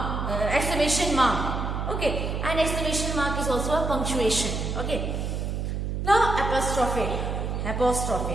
Exclamation mark. Okay. And exclamation mark is also a punctuation. Okay. Now apostrophe.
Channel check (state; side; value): noise; right; hum, 2 dB below the sound